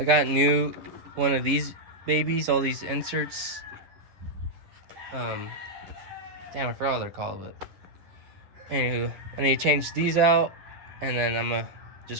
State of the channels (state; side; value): late; left; 11 ms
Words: got one of these babies, all these inserts. Damn, I forgot what they're called, but anywho, I need to change these out, and then I'm gonna